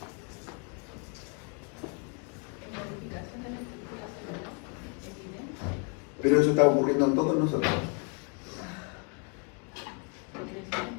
Pero eso está ocurriendo en todos nosotros.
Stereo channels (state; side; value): quieter; right; 36.0 dB